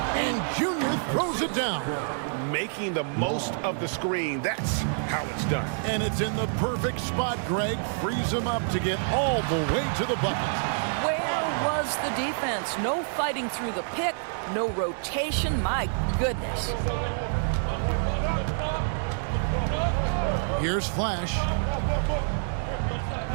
and Junior throws it down. Making the most of the screen, that's how it's done. And it's in the perfect spot, Greg. Frees him up to get all the way to the bucket. Where was the defense? No fighting through the pick, no rotation. My goodness. Here's Flash.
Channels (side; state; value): left; silent; digital silence